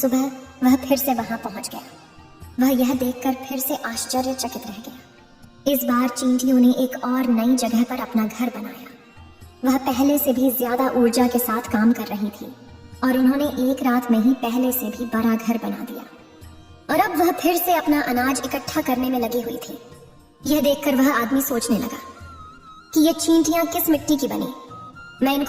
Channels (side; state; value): both; identical; correlation 1.00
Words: वह फिर से वहां पहुंच गया। वह यह देखकर फिर से आश्चर्यचकित रह गया। इस बार चींटियों ने एक और नई जगह पर अपना घर बनाया। वह पहले से भी ज्यादा ऊर्जा के साथ काम कर रही थी और उन्होंने एक रात में ही पहले से भी बड़ा घर बना दिया। और अब वह फिर से अपना अनाज इकट्ठा करने में लगी हुई थी। यह देखकर वह आदमी सोचने लगा कि ये चींटियां किस मिट्टी की बनी। मैं